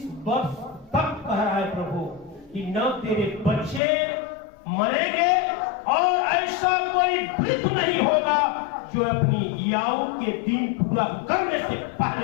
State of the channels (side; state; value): right; drops out; at 3.8 s